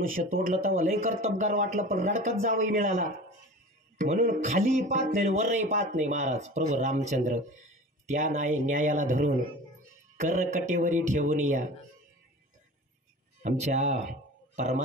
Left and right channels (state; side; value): normal; both; correlation 0.37